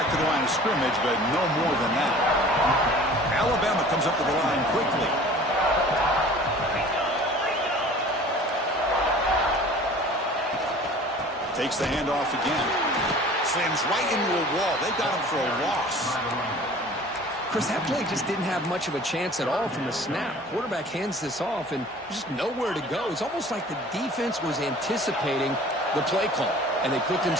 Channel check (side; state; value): both; normal; correlation 0.46